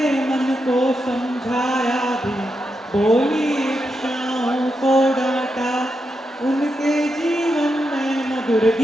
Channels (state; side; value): normal; both; correlation 0.85